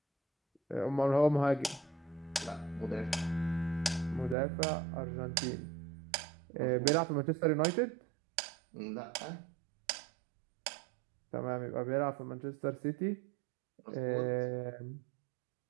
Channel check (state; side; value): drops out; left; at 4.4 s